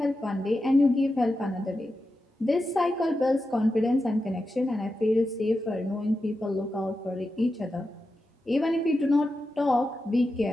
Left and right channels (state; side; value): normal; both; correlation 0.90